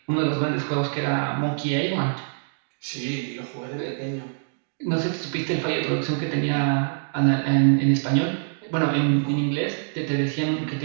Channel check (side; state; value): left; silent; digital silence